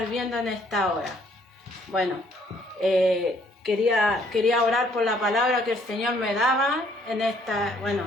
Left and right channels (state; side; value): normal; both; correlation 0.64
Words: viendo en esta hora. Bueno, quería orar por la palabra que el Señor me daba en esta